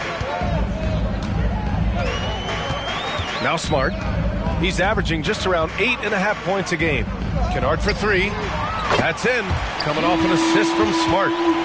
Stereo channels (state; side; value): identical; both; correlation 1.00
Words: Now Smart. He's averaging just around 8.5 points a game. Kennard for 3. That's in. Coming off an assist from Smart.